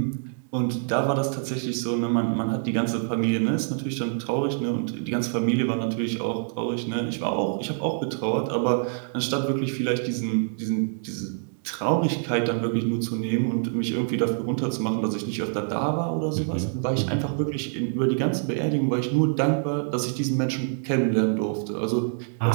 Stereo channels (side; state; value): left; silent; digital silence